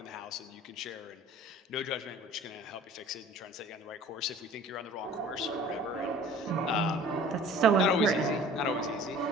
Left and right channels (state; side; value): normal; both; correlation 0.47